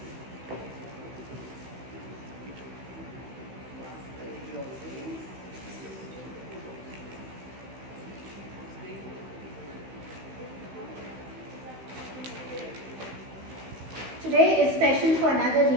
Today is special for another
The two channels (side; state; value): left; late; 15 ms